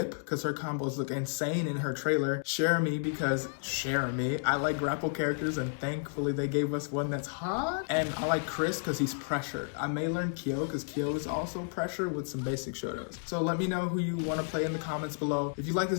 because her combos look insane in her trailer. Shermie because Shermie. I like grapple characters, and thankfully they gave us one that's hot. And I like Chris because he's pressured. I may learn Kyo because Kyo is also pressure with some basic shotos. So let me know who you want to play in the comments below. If you like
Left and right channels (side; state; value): right; silent; digital silence